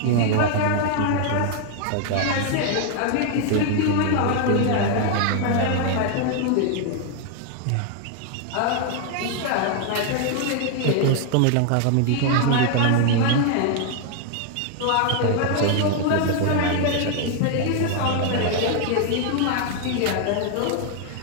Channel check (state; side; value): different; both; correlation 0.00